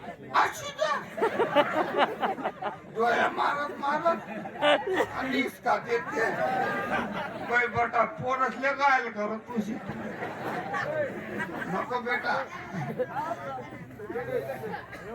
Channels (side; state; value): both; identical; correlation 1.00